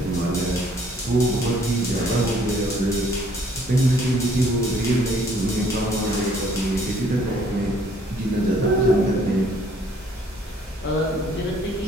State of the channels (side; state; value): both; normal; correlation 0.61